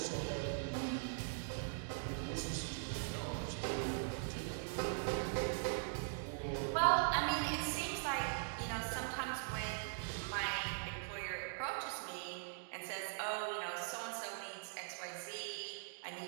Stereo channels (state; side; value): silent; left; digital silence